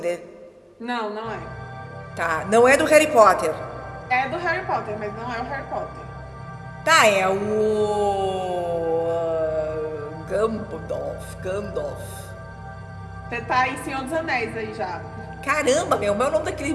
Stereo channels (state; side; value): identical; both; correlation 1.00